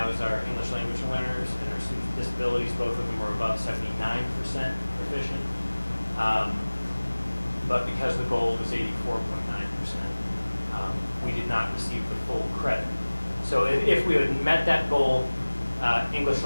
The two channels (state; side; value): inverted; both; correlation -1.00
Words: was our English language learners and our students with disabilities. Both of them were above 79% proficient. But because the goal was 84.9%, we did not receive the full credit. So if we had met that goal, English